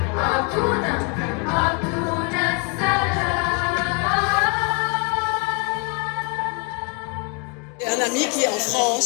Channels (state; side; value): quieter; right; 35.6 dB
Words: un ami qui est en